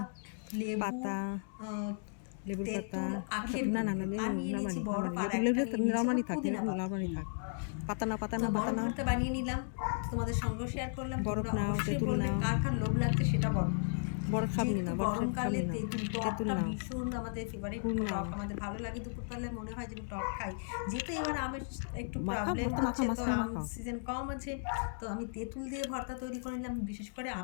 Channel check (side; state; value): right; silent; digital silence